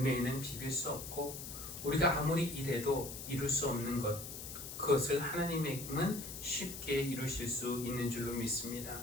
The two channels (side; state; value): left; noise; hiss, 9 dB below the sound